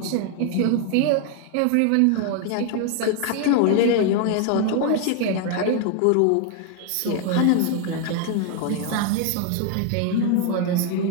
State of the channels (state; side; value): different; both; correlation 0.00